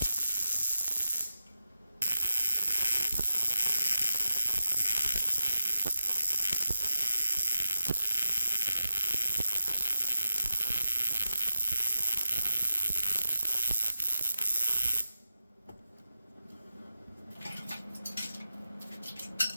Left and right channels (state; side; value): inverted; both; correlation -0.89